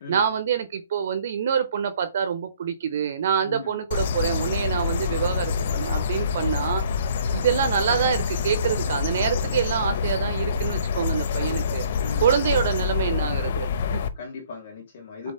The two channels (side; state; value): both; inverted; correlation -0.59